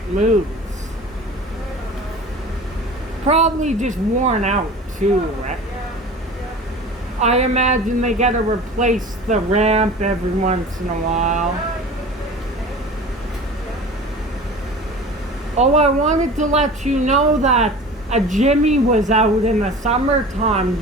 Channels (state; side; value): normal; both; correlation 0.39